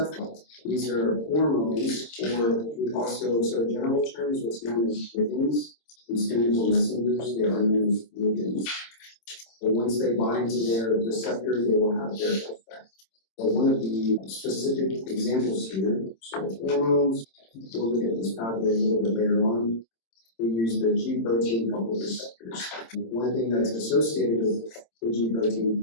These are hormones, or we also, so in general terms, what's known as ligands. These chemical messengers, they are known as ligands. But once they bind to their receptor, they will have their effect. But one of the specific examples here, so hormones, we'll look at this pathway a little bit later on. We use the G protein coupled receptors. One thing that's associated with the G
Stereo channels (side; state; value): right; late; 26 ms